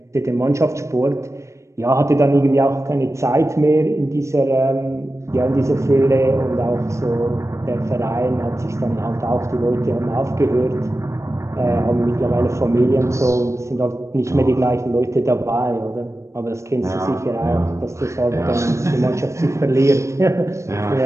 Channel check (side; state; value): left; late; 0.14 ms